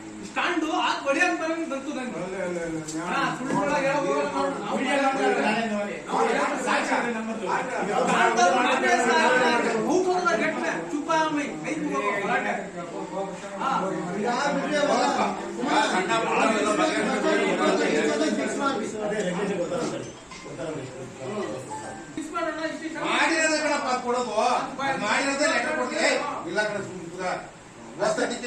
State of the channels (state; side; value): identical; both; correlation 1.00